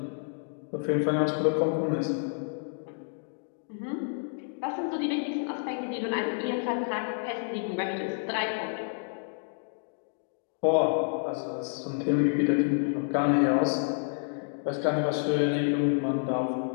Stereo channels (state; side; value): silent; right; digital silence